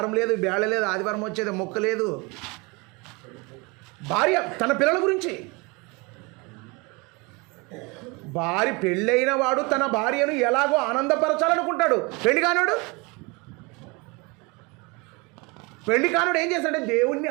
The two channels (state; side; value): quieter; left; 27.5 dB